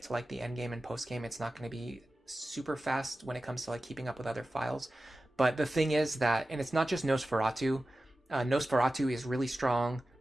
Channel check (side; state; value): both; normal; correlation 0.95